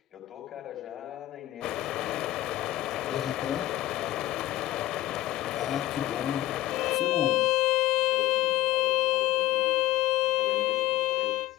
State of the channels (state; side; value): quieter; right; 15.8 dB